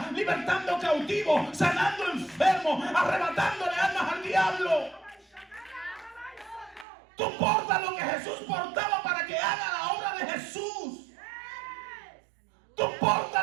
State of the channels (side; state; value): left; drops out; at 6.9 s